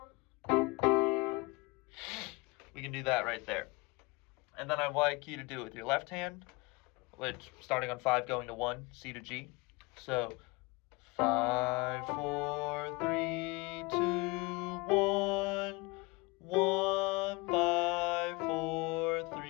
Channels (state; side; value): quieter; right; 25.7 dB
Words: We can do that right there. And then I'd like you to do it with your left hand, which starting on 5 going to 1, C to G. So 5, 4, 3, 2, 1, 1, 5, 4,